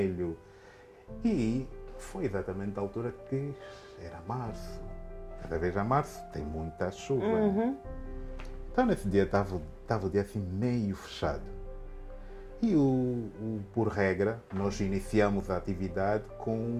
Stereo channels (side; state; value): both; identical; correlation 1.00